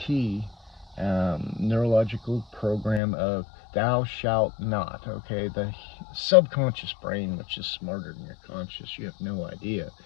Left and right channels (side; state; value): right; drops out; at 3.0 s